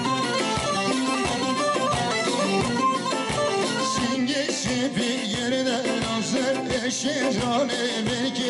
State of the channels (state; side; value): identical; both; correlation 1.00